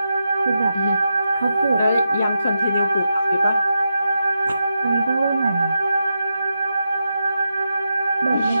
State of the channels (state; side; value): inverted; both; correlation -0.87